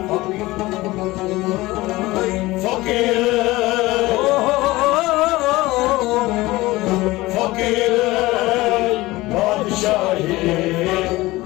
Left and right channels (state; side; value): quieter; right; 19.4 dB